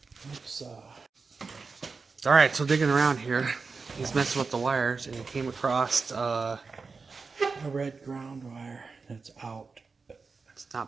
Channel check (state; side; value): quieter; left; 4.6 dB